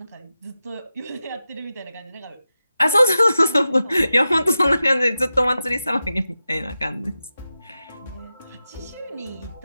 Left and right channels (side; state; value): both; inverted; correlation -0.92